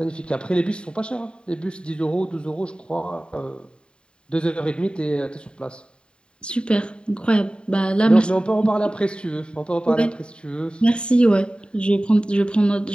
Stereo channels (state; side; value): late; right; 0.052 ms